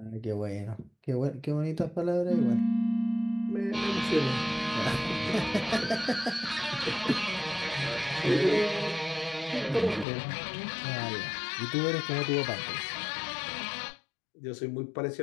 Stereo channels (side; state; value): right; drops out; at 10.1 s